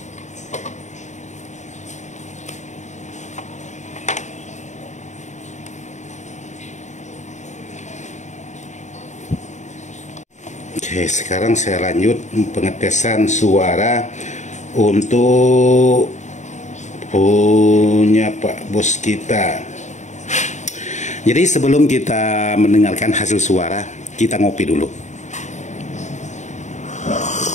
Oke, sekarang saya lanjut pengetesan suara untuk punya Pak Bos kita. Jadi sebelum kita mendengarkan hasil suara, kita ngopi dulu.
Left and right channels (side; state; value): right; late; 0.34 ms